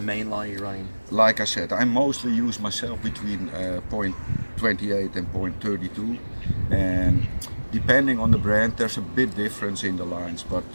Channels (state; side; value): inverted; both; correlation -1.00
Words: main line are you running? Like I said, I mostly use myself between 0.28 and 0.32, and depending on the brand there's a bit difference in the lines, but